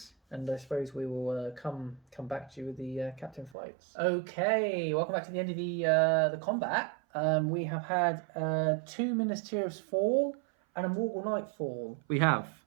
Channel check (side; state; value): left; drops out; at 3.6 s